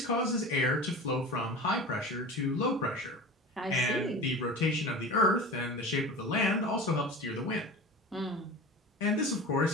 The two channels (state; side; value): normal; both; correlation 0.34